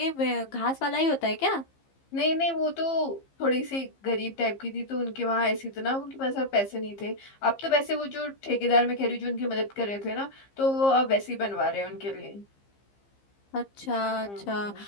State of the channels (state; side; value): late; right; 15 ms